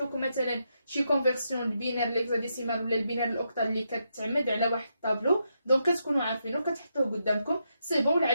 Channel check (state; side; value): inverted; both; correlation -0.82